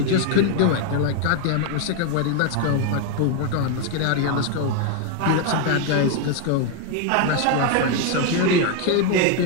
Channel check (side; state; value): both; different; correlation 0.01